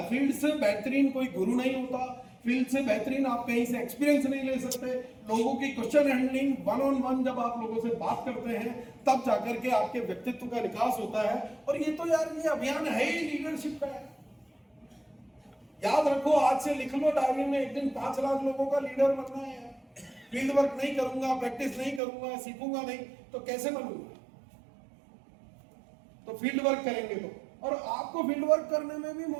फील्ड से बेहतरीन कोई गुरु नहीं होता, फील्ड से बेहतरीन आप कहीं से एक्सपीरियंस नहीं ले सकते। लोगों की question handling, one on one जब आप लोगों से बात करते हैं तब जाकर के आपके व्यक्तित्व का विकास होता है। और ये तो यार ये अभियान है ही लीडरशिप का है। याद रखो, आज से लिख लो डायरी में, एक दिन 5 लाख लोगों का लीडर बनना है। फील्ड वर्क नहीं करूंगा, प्रैक्टिस नहीं करूंगा, सीखूंगा नहीं तो कैसे बनूंगा? तो फील्ड वर्क करेंगे तो, और आपको फील्ड वर्क करने में भी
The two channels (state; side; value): drops out; left; at 22.0 s